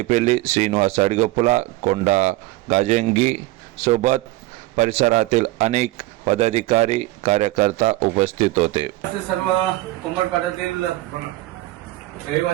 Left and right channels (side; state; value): left; quieter; 18.5 dB